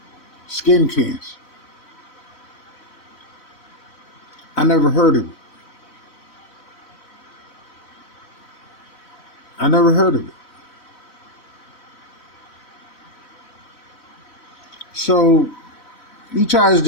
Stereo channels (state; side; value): late; right; 3.1 ms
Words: skin cancer. I never heard of it. I never heard of it. So he tries